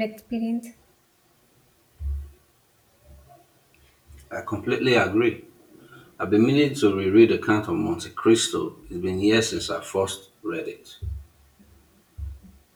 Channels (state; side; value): identical; both; correlation 1.00